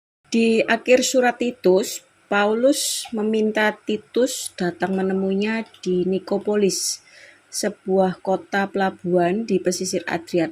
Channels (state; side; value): identical; both; correlation 1.00